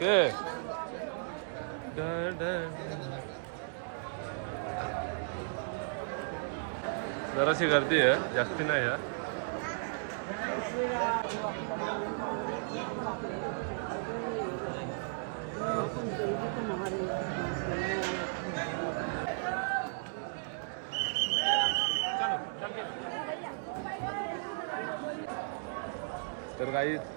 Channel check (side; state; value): left; silent; digital silence